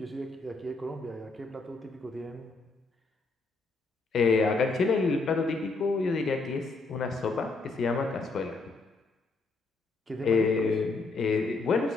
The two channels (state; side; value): quieter; right; 3.7 dB